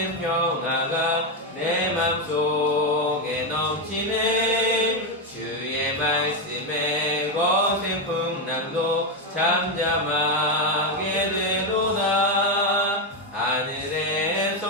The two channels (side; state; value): both; normal; correlation 0.07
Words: 평화가 내 맘속에 넘치네. 주의 말씀에 거센 풍랑도 잠잠하게 되도다.